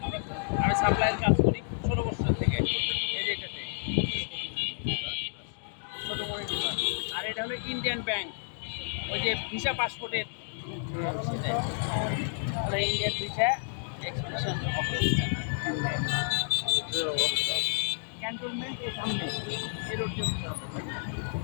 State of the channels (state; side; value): silent; right; digital silence